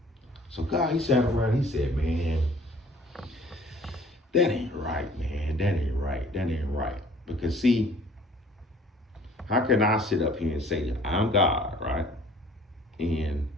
So God, he sat around, he said, man, that ain't right, man. That ain't right. That ain't right. Because see, how can I sit up here and say that I'm God, right? And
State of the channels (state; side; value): normal; both; correlation 0.53